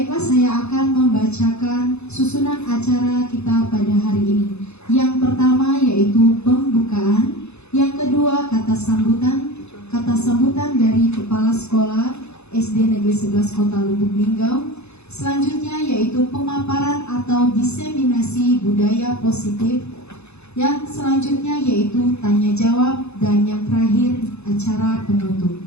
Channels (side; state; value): right; late; 0.80 ms